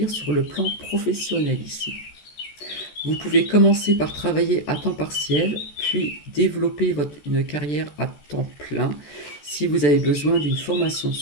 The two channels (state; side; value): late; right; 14 ms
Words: sur le plan professionnel ici. Vous pouvez commencer par travailler à temps partiel, puis développer une carrière à temps plein si vous avez besoin d'une formation